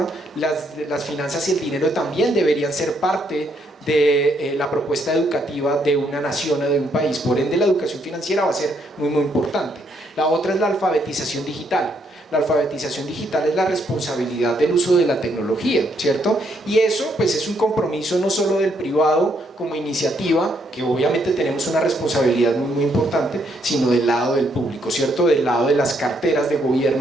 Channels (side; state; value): both; normal; correlation 0.73